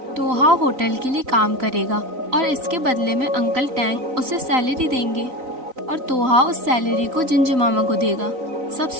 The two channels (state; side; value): late; left; 3.9 ms